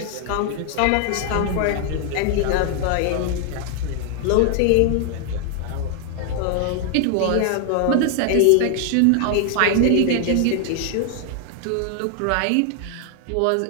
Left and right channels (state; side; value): different; both; correlation 0.00